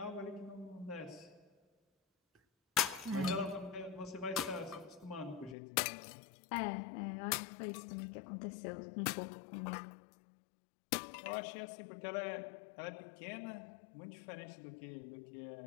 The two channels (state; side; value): drops out; right; at 5.6 s